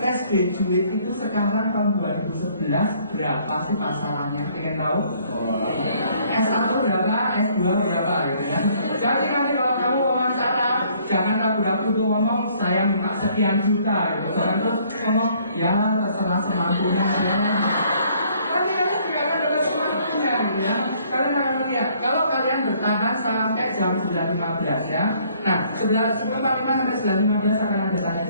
graduate itu sekarang tahun 2011 berapa sih pasarannya? Pengen tahu? S1 berapa? S2 berapa gitu ya. Jadi nanti kalau kamu wawancara, jangan ragu-ragu tuh ngomong saya minta sekian juta gitu. Jangan terus ngomong ya terserah semampunya ya. Kan kamu juga akan dapat semampunya gitu ya. Kalian akan melihat kalau kalian bertahan sampai jam 9.15 ya. Nah, 9.45 sampai 9.15 akan ada tanya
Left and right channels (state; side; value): inverted; both; correlation -0.62